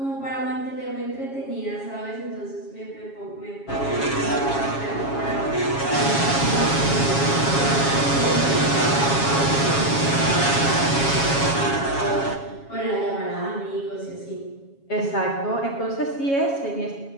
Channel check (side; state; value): right; late; 7.3 ms